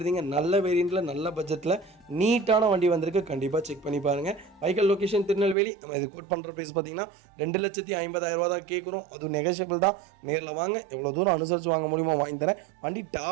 நல்ல வேரியண்ட்டில் நல்ல பட்ஜெட்டில் நீட்டான வண்டி வந்திருக்கு. கண்டிப்பாக செக் பண்ணி பாருங்கள். Vehicle location Tirunelveli. நம்ம இது கோட் பண்ணுற ப்ரைஸ் பார்த்தீங்கன்னா 2,50,000 தான் கேட்குறோம். அதுவும் நெகோஷியபிள் தான். நேரில் வாங்க, எவ்வளோ தூரம் அனுசரித்து வாங்க முடியுமோ வாங்கி தரேன். வண்டி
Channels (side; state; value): left; drops out; at 5.6 s